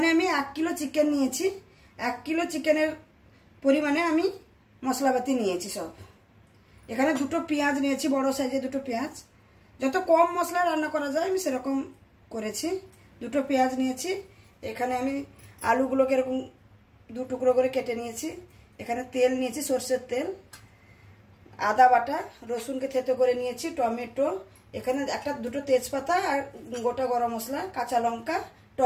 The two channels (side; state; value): both; identical; correlation 1.00